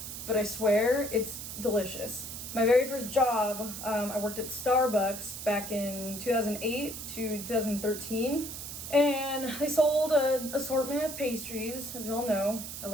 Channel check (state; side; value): noise; right; hiss, 8 dB below the sound